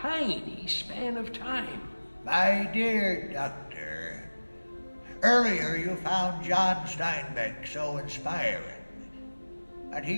span of time. My dear Doctor, earlier you found John Steinbeck so inspiring, but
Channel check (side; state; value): both; inverted; correlation -1.00